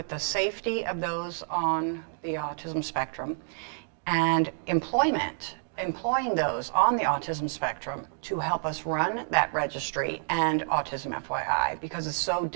the safety of those on the autism spectrum and employing those on the autism spectrum to help us run that registry and Autism FYI, because it's so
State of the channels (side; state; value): left; silent; digital silence